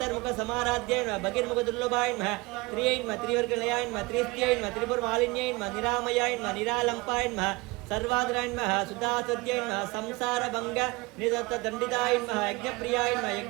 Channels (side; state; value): left; quieter; 23.5 dB